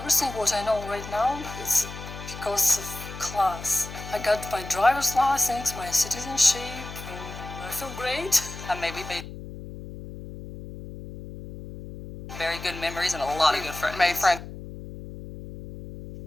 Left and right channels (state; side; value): noise; left; hum, 12 dB below the sound